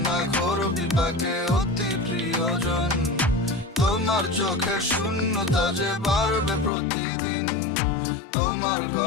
না ঘোর বিপাকে অতি প্রিয়জন। তোমার চোখের শূন্যতা যে বাড়বে প্রতিদিন, তোমার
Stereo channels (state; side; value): drops out; right; at 6.7 s